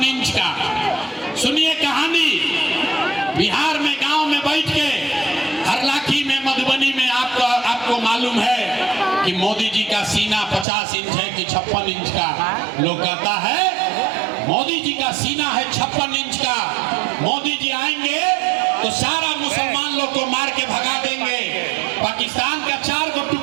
इंच का। सुनिए कहानी, बिहार में गांव में बैठ के, हरलाखी में, मधुबनी में आपको मालूम है कि मोदी जी का सीना 50 इंच है कि 56 इंच का। लोग कहता है मोदी जी का सीना है 56 इंच का, मोदी जी आएंगे तो सारा मुसलमान लोग को मार के भगा देंगे, पाकिस्तान का 4 को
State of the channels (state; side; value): drops out; left; at 10.7 s